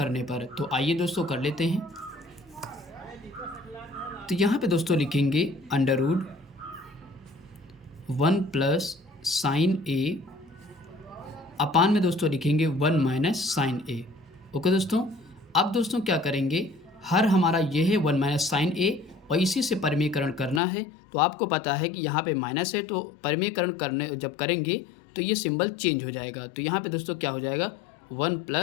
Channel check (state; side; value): drops out; right; at 20.6 s